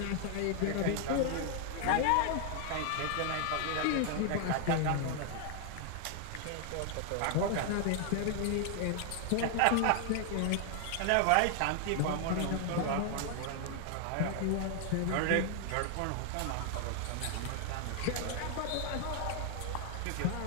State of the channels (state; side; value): different; both; correlation 0.00